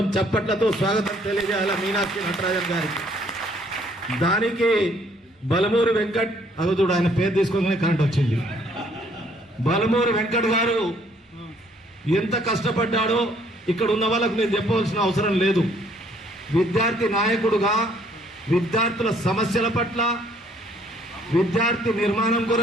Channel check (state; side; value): normal; both; correlation 0.64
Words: చప్పట్లతో స్వాగతం తెలియజేయాలి మీనాక్షి నటరాజన్ గారికి. దానికి బలమూరి వెంకట్, అగదుడు ఆయన పేరు తీసుకోగానే కరెంట్ వచ్చింది, బలమూరి వెంకట్ గారు ఎంత కష్టపడ్డాడో ఇక్కడ ఉన్న వాళ్ళకు నేను చెప్పవలసిన అవసరం లేదు. విద్యార్థి నాయకుడుగా విద్యార్థుల సమస్యల పట్ల, విద్యార్థి నిర్మాణం